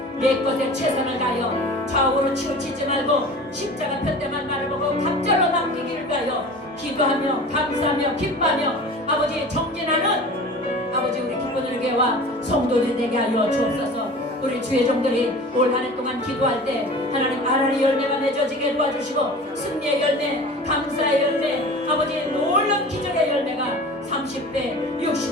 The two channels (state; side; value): normal; both; correlation 0.39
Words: 내 것에 최선을 다하여 좌우로 치우치지 말고 십자가 편대만 바라보고 갑절로 남기기를 위하여 기도하며 감사하며 기뻐하며 아버지 정진하는 아버지 우리 기쁜을 교회와 성도들이 되게 하여 주옵소서. 우리 주의 종들이 올 한 해 동안 기도할 때 하나님 아라리 열매가 맺어지게 도와주시고 승리의 열매 감사의 열매 아버지 놀라운 기적의 열매가 30배